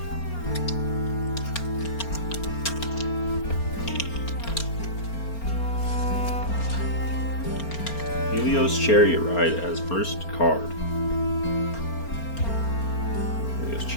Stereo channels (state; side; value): late; right; 4.4 ms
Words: Helios Chariot Ride as first card. Helios